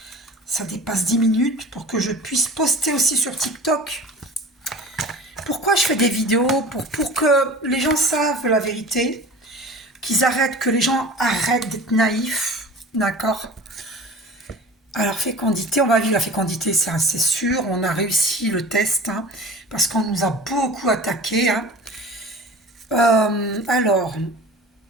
dépasse 10 minutes, pour que je puisse poster aussi sur TikTok. Pourquoi je fais des vidéos? Pour que les gens savent la vérité, que les gens arrêtent d'être naïfs, d'accord? Alors, fécondité, on va vivre la fécondité, c'est sûr, on a réussi le test, hein, parce qu'on nous a beaucoup attaqué. Hein. Alors,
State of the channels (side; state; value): both; normal; correlation 0.39